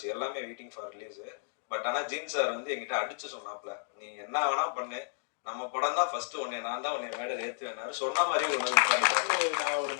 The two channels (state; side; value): silent; right; digital silence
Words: எல்லாமே வெயிட்டிங் ஃபார் ரிலீஸு. பட் ஆனால் ஜீன் சார் வந்து என்கிட்ட அடிச்சு சொன்னாப்ல, நீ என்ன வேணா பண்ணு, நம்ம படம் தான் ஃபர்ஸ்ட் ஒன்னே நான் தான் உன்னை மேடல் ஏற்றுவேன் சொன்ன மாதிரி ஒரு நாள் உட்கார்ந்துட்டாரு. நான் ஒரு